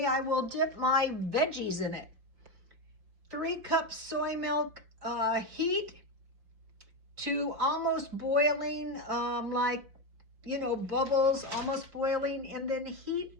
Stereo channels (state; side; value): late; left; 5.8 ms